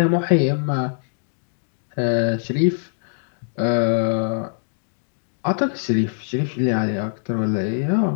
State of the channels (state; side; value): silent; right; digital silence